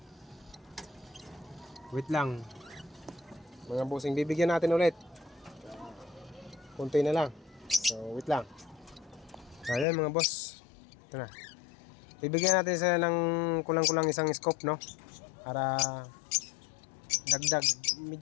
Wait lang. Mga bossing, bibigyan natin ulit. Kunti na lang. So wait lang. Ayan mga boss. Ito na. Bibigyan natin sila ng kulang-kulang isang scoop, no? Para dagdag.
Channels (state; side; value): drops out; right; at 9.9 s